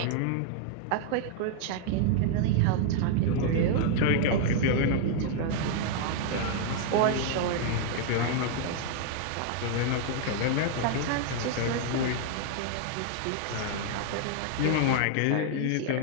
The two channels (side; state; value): both; different; correlation -0.01